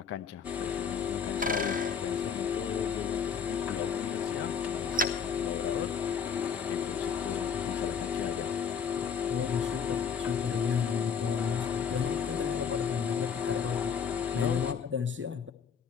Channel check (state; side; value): quieter; right; 6.7 dB